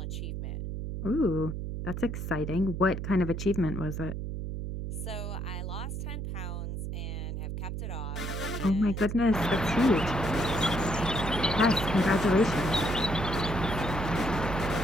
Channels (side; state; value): right; noise; hum, 5 dB below the sound